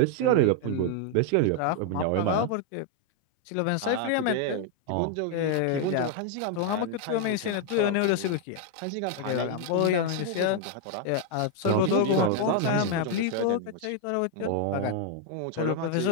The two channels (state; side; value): different; both; correlation 0.00